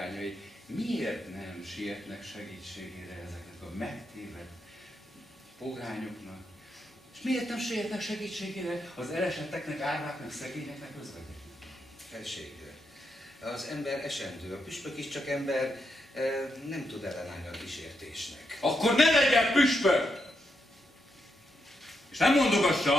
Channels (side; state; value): both; normal; correlation 0.82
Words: miért nem sietnek segítségére ezeknek a megtévedt pogányoknak? És miért nem sietnek segítségére az elesetteknek, árváknak, szegényeknek, özvegyeknek? Felség, az ember esendő, a püspök is csak ember, nem tud ellenállni a kísértésnek. Akkor ne legyen püspök! És nem